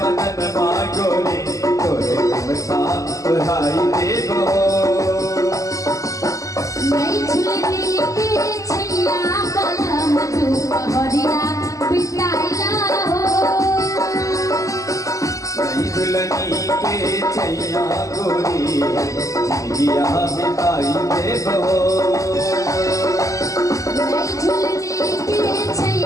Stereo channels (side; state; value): right; late; 0.16 ms